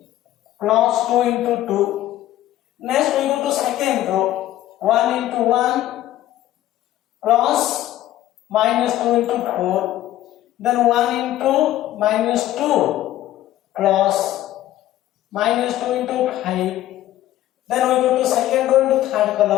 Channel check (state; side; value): quieter; right; 13.9 dB